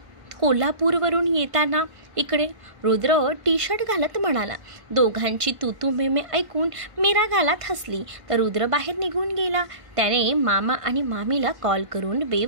कोल्हापूरवरून येताना इकडे. रुद्र टी शर्ट घालत म्हणाला. दोघांची तू मेमे ऐकून मीरा गालात हसली तर रुद्र बाहेर निघून गेला. त्याने मामा आणि मामीला कॉल करून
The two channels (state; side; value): late; left; 1.5 ms